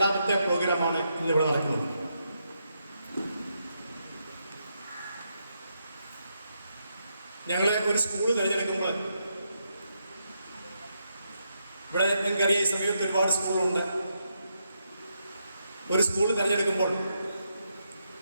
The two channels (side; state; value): both; inverted; correlation -0.81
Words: പ്രോഗ്രാമാണ് ഇന്നിവിടെ നടക്കുന്നത്. ഞങ്ങൾ ഒരു സ്കൂൾ തിരഞ്ഞെടുക്കുമ്പോൾ, ഇവിടെ നിങ്ങൾക്കറിയാം ഈ സമയത്ത് ഒരുപാട് സ്കൂളുണ്ട്. ഒരു സ്കൂൾ തിരഞ്ഞെടുക്കുമ്പോൾ